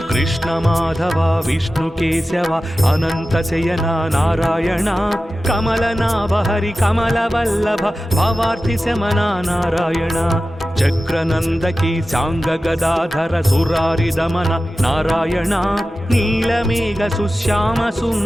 కృష్ణ మాధవ విష్ణు కేశవ అనంత శయన నారాయణ కమలనాభ హరి కమల వల్లభ భవార్తి శమన నారాయణ చక్రనందకి సాంగ గదాధర సురారి దమన నారాయణ నీలమేఘ సుశ్యామ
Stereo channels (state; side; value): normal; both; correlation 0.94